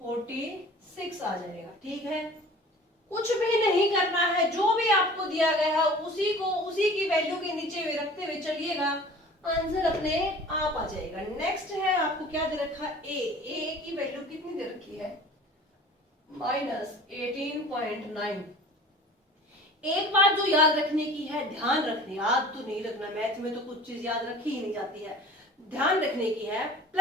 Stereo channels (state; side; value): normal; both; correlation 0.44